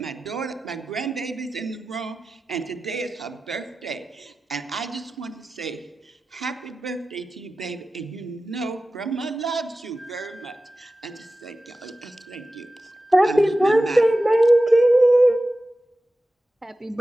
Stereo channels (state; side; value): normal; both; correlation 0.94